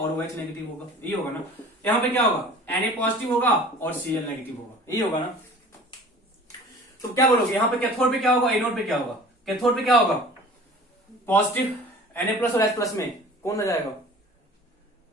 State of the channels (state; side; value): normal; both; correlation 0.45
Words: OH नेगेटिव होगा, ये होगा ना। यहाँ पे क्या होगा, Na पॉजिटिव होगा और Cl नेगेटिव होगा, ये होगा ना। तो क्या बोलोगे, यहाँ पे कैथोड पे क्या होगा, एनोड पे क्या होगा, कैथोड पे क्या होगा, पॉजिटिव Na प्लस और H प्लस में कौन रह जाएगा,